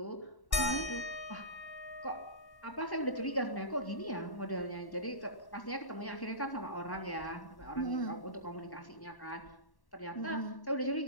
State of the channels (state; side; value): late; right; 1.1 ms